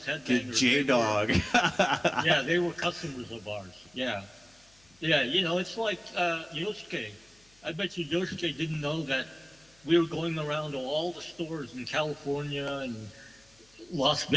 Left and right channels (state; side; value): noise; left; hum, 30 dB below the sound